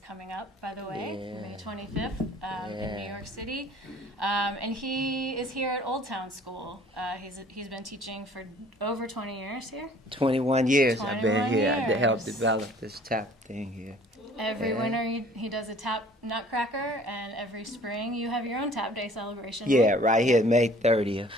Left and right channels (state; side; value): normal; both; correlation 0.53